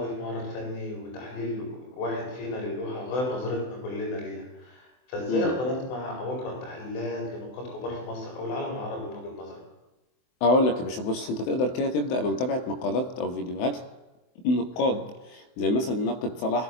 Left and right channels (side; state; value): right; late; 24 ms